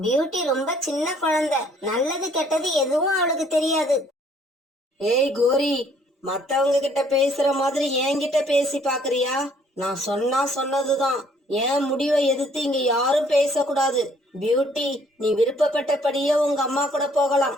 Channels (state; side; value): normal; both; correlation 0.62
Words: பியூட்டி ரொம்ப சின்ன குழந்தை. நல்லது கெட்டது எதுவும் அவளுக்கு தெரியாது. ஏய் கோரி, மத்தவங்க கிட்ட பேசுற மாதிரி என்கிட்ட பேசி பாக்குறியா? நான் சொன்னா சொன்னதுதான். என் முடிவை எதிர்த்து இங்க யாரும் பேசக்கூடாது. பியூட்டி, நீ விருப்பப்பட்டபடியே உங்க அம்மா கூட போகலாம்.